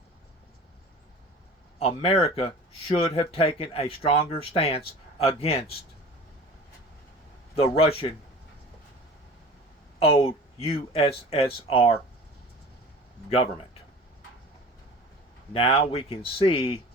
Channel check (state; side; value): normal; both; correlation 0.41